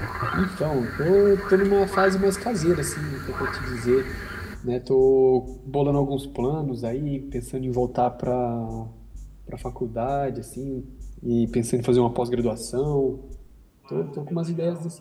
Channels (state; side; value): identical; both; correlation 1.00